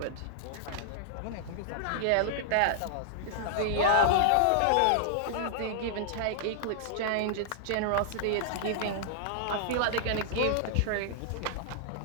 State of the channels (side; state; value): both; different; correlation -0.01